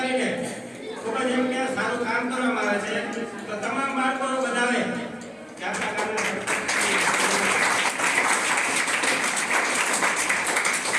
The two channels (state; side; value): identical; both; correlation 1.00